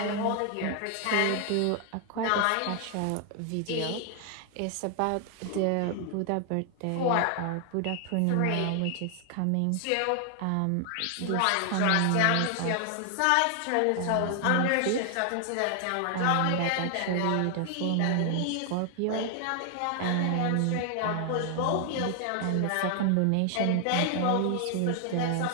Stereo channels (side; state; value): both; different; correlation 0.00